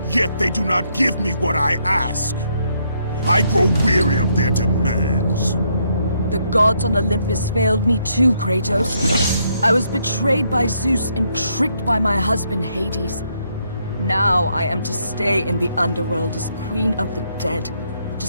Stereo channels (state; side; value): inverted; both; correlation -0.74